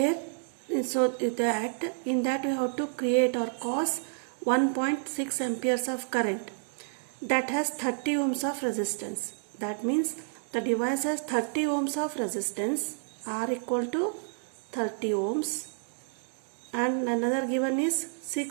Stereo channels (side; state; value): left; silent; digital silence